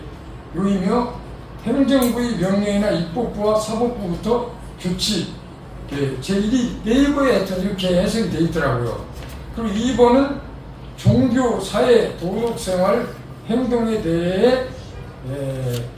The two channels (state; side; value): identical; both; correlation 1.00